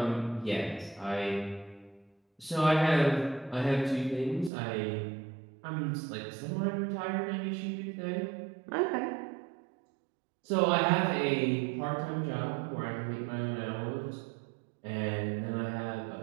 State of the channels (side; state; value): left; drops out; at 4.5 s